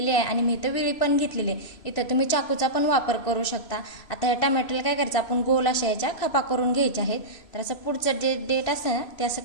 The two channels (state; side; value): late; right; 3.0 ms